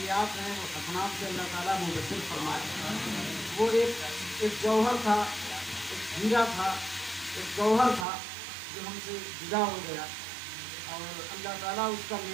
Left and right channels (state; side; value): drops out; left; at 8.1 s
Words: हैं वो हसनात से अल्लाह ताला मुबद्दल फरमाए। वो एक जौहर था, एक हीरा था, एक गौहर था जो हमसे जुदा हो गया और अल्लाह ताला उसका